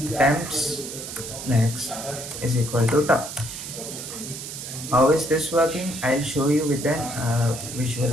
temps next is equal to top. How is this working? I'll show you with an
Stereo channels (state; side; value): noise; right; hiss, 9 dB below the sound